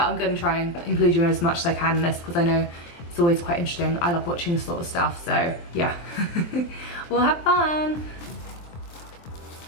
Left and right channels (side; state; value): right; late; 23 ms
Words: I'm going to try and include you in as much as I can in this because I know it's always quite interesting. I love watching this sort of stuff, so yeah. We'll have fun.